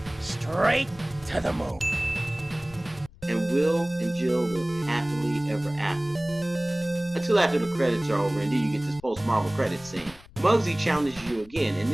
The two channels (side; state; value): left; noise; rumble, 23 dB below the sound